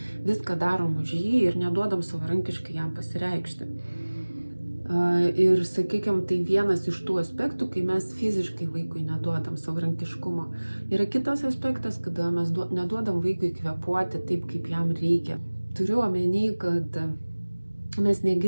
viską darom už jį ir neduodam savarankiškai jam pasireikšti. Ir, sakykime, tai vienas iš tų aspektų, kai mes fiziškai vaikui neduodam savarankiškumo. Yra kitas aspektas, kada mes neduodam vaikui kvėpuoti taip, kaip jam reikia. Turiu omeny, kad mes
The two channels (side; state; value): both; inverted; correlation -1.00